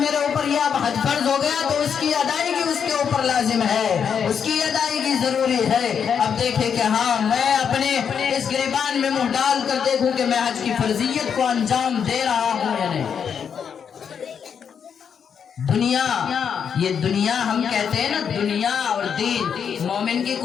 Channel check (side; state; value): right; quieter; 7.3 dB